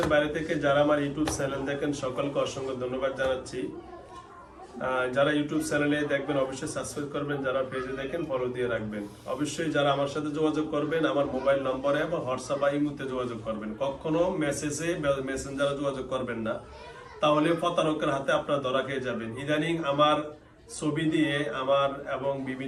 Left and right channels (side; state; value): both; identical; correlation 1.00